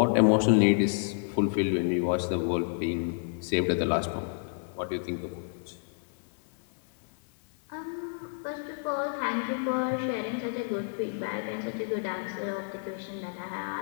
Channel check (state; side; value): silent; right; 58 dB below the other